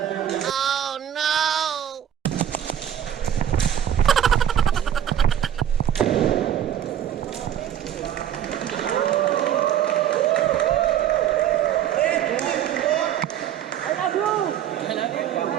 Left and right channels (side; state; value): left; quieter; 10.3 dB